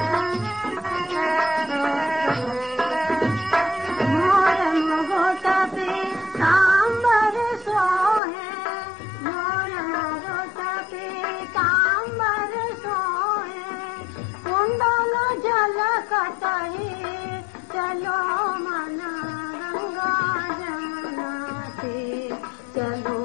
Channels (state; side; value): drops out; right; at 8.2 s